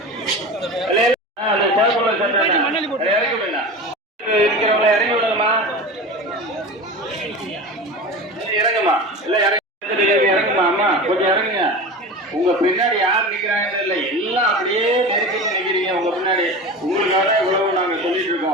அந்த சேக்குள்ள சட்டை இறங்க வேண்டாம். இருக்கிறவங்கள இறங்கி விடுங்கம்மா. இறங்குமா, எல்லாம் இறங்குமா. அம்மா கொஞ்சம் இறங்குங்க. உங்க பின்னாடி யார் நிக்கிறாங்கன்னு இல்லை, எல்லாம் அப்படியே நெருக்கி நிக்கிறீங்க. உங்க பின்னாடி உங்களுக்காக இவ்வளவு நாங்க சொல்லிட்டு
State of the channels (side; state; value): both; normal; correlation 0.30